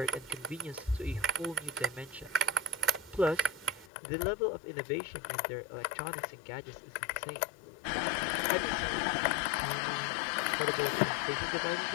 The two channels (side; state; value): right; drops out; at 3.9 s